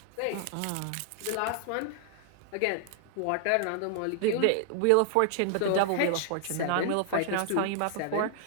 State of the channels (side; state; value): both; different; correlation 0.00